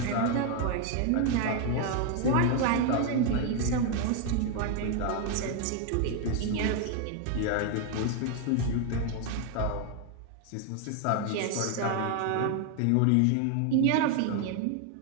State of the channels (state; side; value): different; both; correlation 0.01